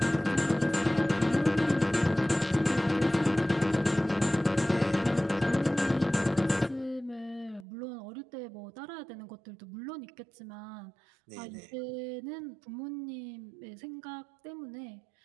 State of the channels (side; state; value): left; drops out; at 7.7 s